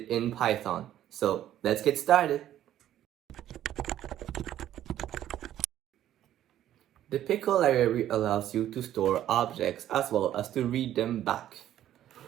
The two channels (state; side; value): quieter; left; 12.0 dB